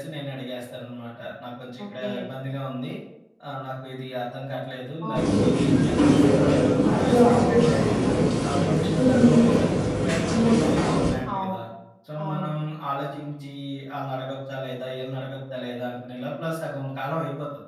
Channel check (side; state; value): both; identical; correlation 1.00